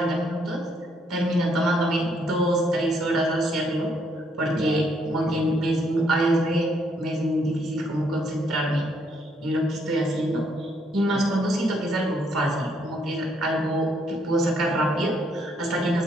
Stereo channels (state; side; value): normal; both; correlation 0.71